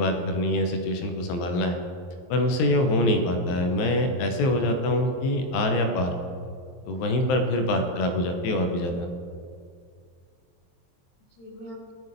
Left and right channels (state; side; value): late; right; 23 ms